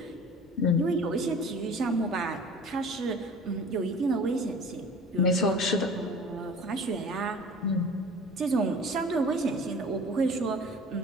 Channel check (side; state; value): both; normal; correlation 0.42